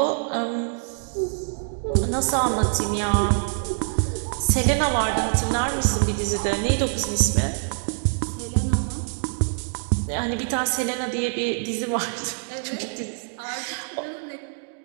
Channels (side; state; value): left; silent; 62 dB below the other